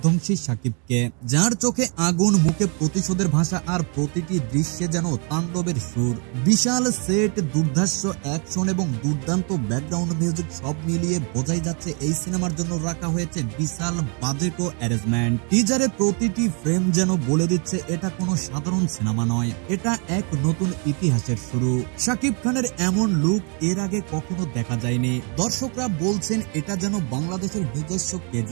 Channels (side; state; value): left; quieter; 37.2 dB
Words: শাকিবকে, যার চোখে আগুন, মুখে প্রতিশোধের ভাষা, আর প্রতিটি দৃশ্যে যেন তাণ্ডবের সুর। বিশাল সেট, দুর্ধর্ষ অ্যাকশন এবং দুর্দান্ত ব্যাকগ্রাউন্ড মিউজিক সব মিলিয়ে বোঝাই যাচ্ছে এই সিনেমার জন্য রাখা হয়েছে বিশাল বাজেট ও অ্যারেঞ্জমেন্ট। টিজারে প্রতিটি ফ্রেম যেন বলে দিচ্ছে এটা কোনো সাধারণ সিনেমা নয়, এটা এক নতুন ইতিহাসের শুরু। শাকিব খানের এমন লুক এর আগে কখনো দেখা যায়নি। দর্শকরা বলছেন এটা যেন বাংলাদেশের নিজস্ব